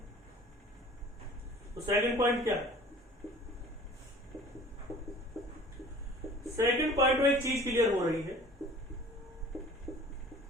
तो सेकंड पॉइंट क्या है? सेकंड पॉइंट में एक चीज क्लियर हो रही है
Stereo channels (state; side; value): normal; both; correlation 0.46